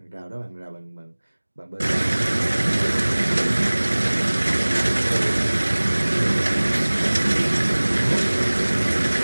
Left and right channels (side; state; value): both; inverted; correlation -1.00